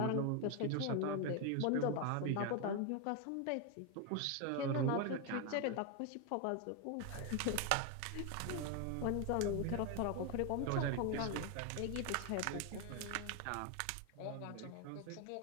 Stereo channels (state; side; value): different; both; correlation 0.01